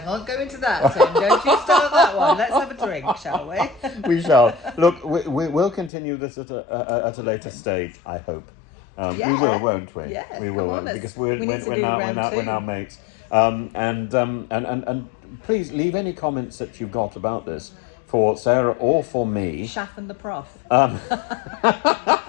go into that, Tim. Don't you start that one. Let's have a drink, shall we? We shall. Look, we'll continue this at a later stage, I hope. We will, won't we? Yeah, we will, because we're now mates. And please leave any comments that you've got about this for Sarah or for me. Shaff and the Prof.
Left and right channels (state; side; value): drops out; right; at 5.9 s